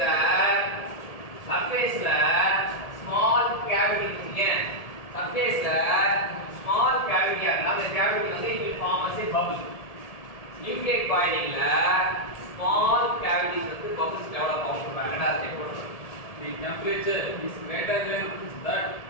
ஸ்மால் கேவிட்டி இருக்குங்க. சர்ஃபேஸ்ல ஸ்மால் கேவிட்டியா இருந்தா அந்த கேவிட்டி வந்து it will form as a bubble. Nucleate பாயிலிங்ல small cavities வந்து bubbles develop ஆகும் சொல்றாங்க. ரெண்டாவது ஸ்டெப் போடுறோம். The temperature is greater than that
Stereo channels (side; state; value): right; late; 1.7 ms